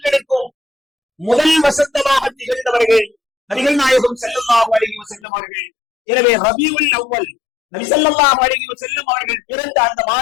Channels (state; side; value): drops out; right; at 5.2 s